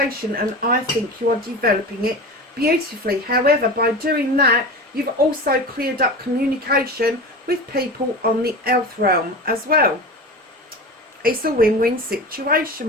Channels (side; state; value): both; normal; correlation 0.30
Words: and I think you are developing it beautifully. However, by doing that, you've also cleared up communication with people on the earth realm as well. It's a win-win situation,